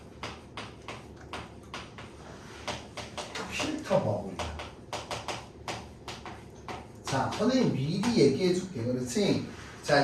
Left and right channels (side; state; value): both; identical; correlation 1.00